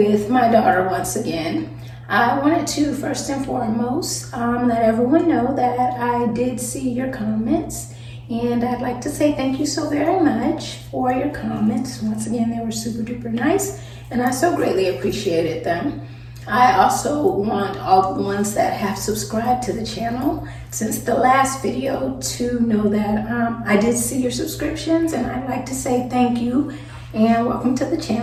my daughter once again. I wanted to first and foremost let everyone know that I did see your comments, and I'd like to say thank you so very much for your comments. Once again, they were super duper nice and I so greatly appreciated them. I also want all the ones that have subscribed to the channel since the last video to know that I did see your subscriptions, and I'd like to say thank you and welcome to the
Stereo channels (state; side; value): identical; both; correlation 1.00